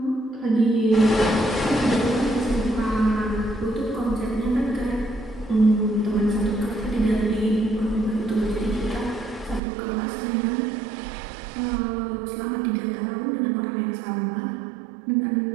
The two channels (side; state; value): left; drops out; at 9.6 s